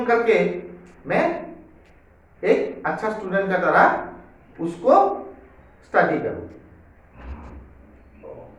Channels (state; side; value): identical; both; correlation 1.00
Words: करके मैं एक अच्छा स्टूडेंट का तरह उसको स्टडी करूं।